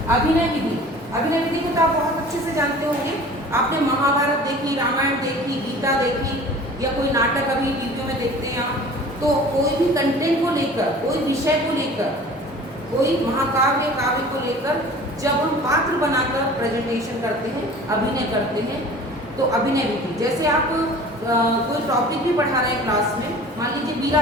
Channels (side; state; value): both; normal; correlation 0.44